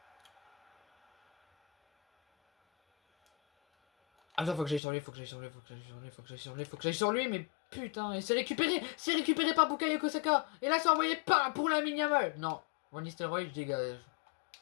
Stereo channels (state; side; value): drops out; right; at 4.8 s